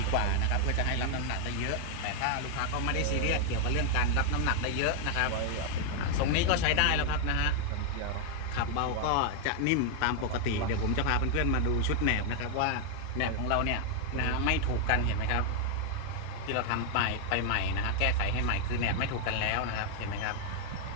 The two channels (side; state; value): both; different; correlation 0.00